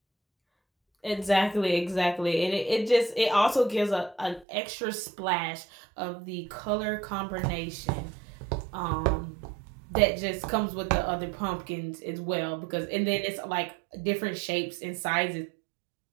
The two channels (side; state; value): left; drops out; at 4.5 s